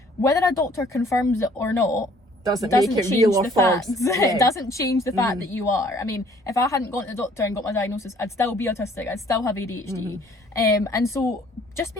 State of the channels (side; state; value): both; normal; correlation 0.58